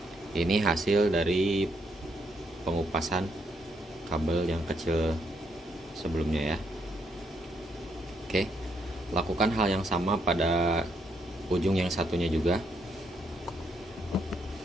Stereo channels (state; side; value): normal; both; correlation 0.75